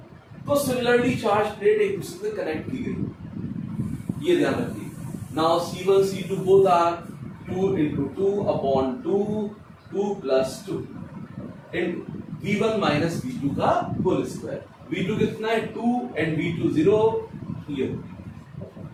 तो सिमिलरली चार्ज प्लेट एक दूसरे से कनेक्ट की गई, ये ध्यान रखिए। Now C1 C2 both are 2 into 2 upon 2 plus 2 into V1 minus V2 का होल स्क्वायर। V2 कितना है 2 and V2 0, ये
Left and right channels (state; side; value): identical; both; correlation 1.00